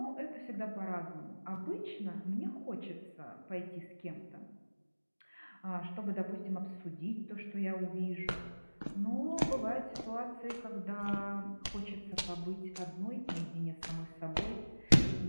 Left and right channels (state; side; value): inverted; both; correlation -1.00